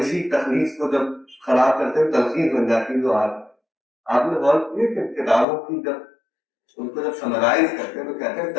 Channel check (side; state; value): right; drops out; at 5.5 s